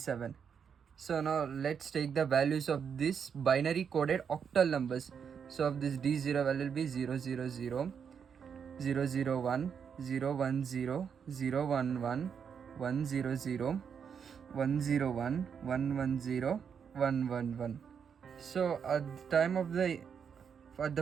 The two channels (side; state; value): left; quieter; 7.1 dB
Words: So now let's take the values of this binary coded octal numbers. So of this D0 value will be 000, 001, 010, 011, 100, 101, 110, 111. So at